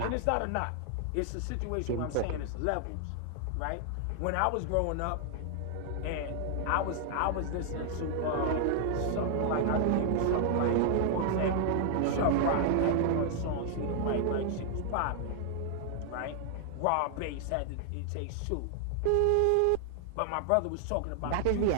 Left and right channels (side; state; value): both; different; correlation 0.00